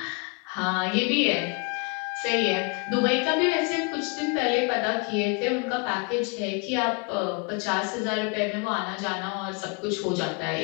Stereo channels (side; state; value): right; quieter; 32.5 dB